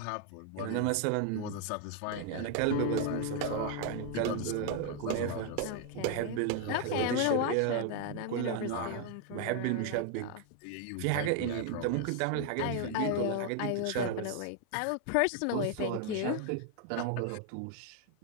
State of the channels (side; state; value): both; different; correlation 0.00